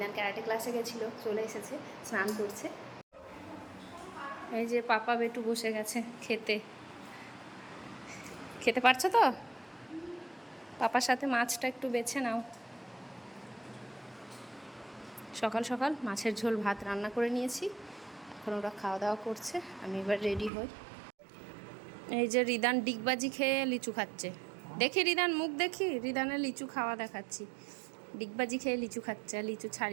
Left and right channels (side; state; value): left; drops out; at 20.5 s